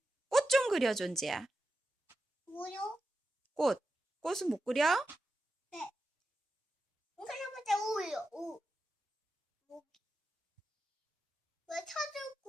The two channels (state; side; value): normal; both; correlation 0.90